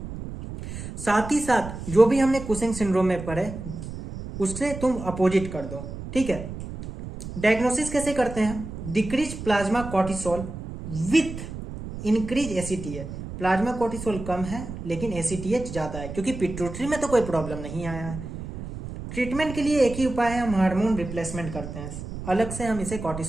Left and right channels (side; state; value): right; noise; rumble, 9 dB below the sound